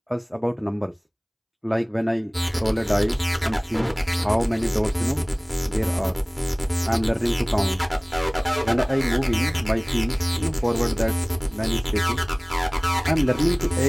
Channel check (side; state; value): both; identical; correlation 1.00